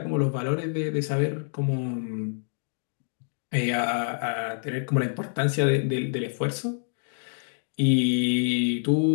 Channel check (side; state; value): right; silent; digital silence